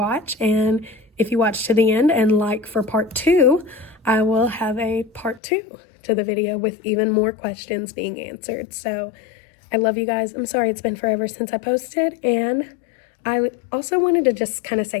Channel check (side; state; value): right; drops out; at 5.4 s